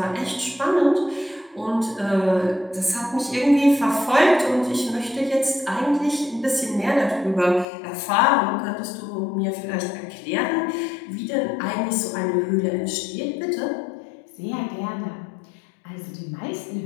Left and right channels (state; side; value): drops out; right; at 7.7 s